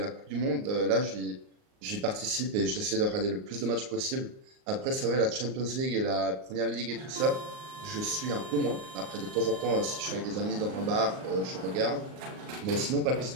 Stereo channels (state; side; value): late; left; 38 ms